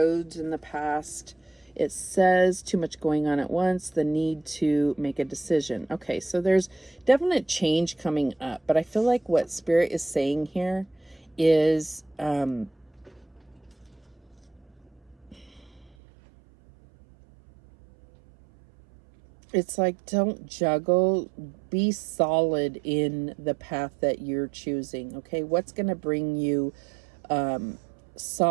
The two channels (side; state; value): left; drops out; at 16.0 s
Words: in the past. It says too much going on at once, the need to make a decision. Okay, so there's definite change coming up, but I feel like what Spirit is saying here is it's like, don't juggle, be solid in the path that you're choosing. Okay, what's going to bring you